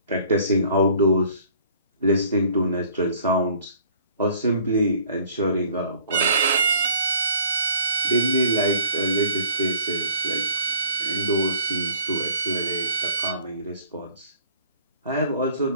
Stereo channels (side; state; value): both; inverted; correlation -0.54